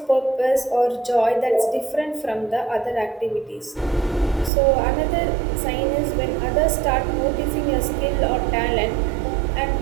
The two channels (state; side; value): drops out; left; at 4.5 s